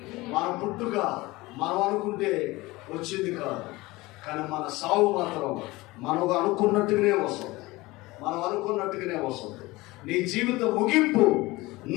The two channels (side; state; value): right; quieter; 20.9 dB